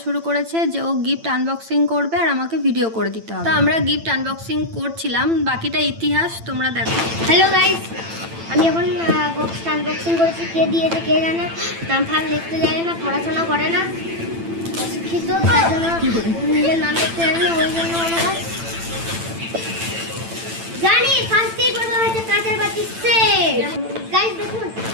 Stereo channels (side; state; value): left; late; 8.9 ms